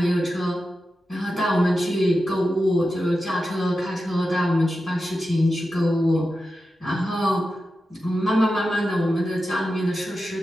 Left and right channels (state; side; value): normal; both; correlation 0.91